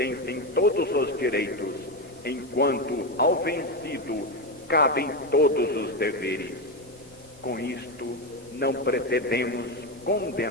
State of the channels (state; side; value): normal; both; correlation 0.12